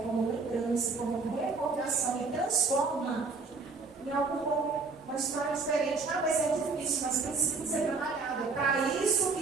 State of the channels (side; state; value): left; quieter; 4.2 dB